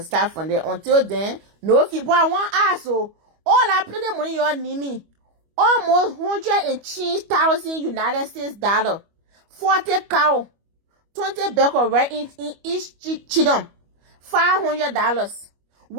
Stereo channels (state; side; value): late; left; 25 ms